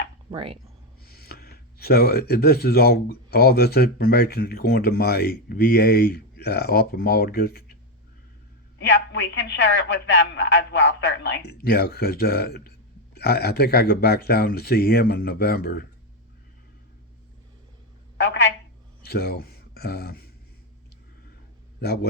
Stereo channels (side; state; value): both; normal; correlation 0.08